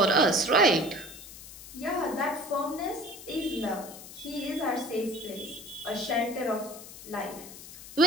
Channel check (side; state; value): left; noise; hiss, 15 dB below the sound